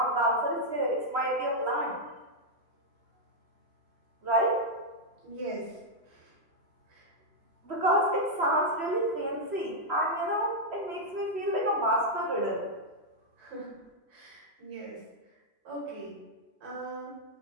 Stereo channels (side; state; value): left; late; 3.0 ms